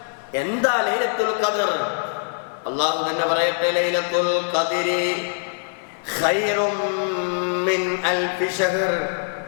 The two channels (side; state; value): right; silent; digital silence